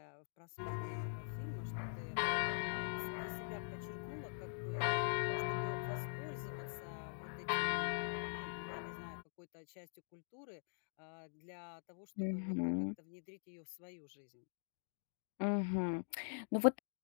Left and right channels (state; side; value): silent; right; digital silence